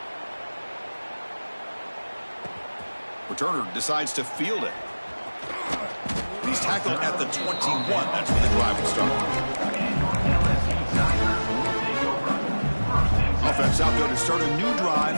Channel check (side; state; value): both; inverted; correlation -1.00